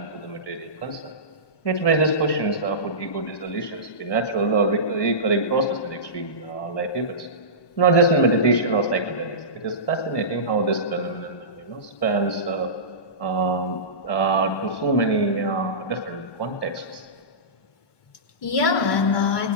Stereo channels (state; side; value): late; right; 1.2 ms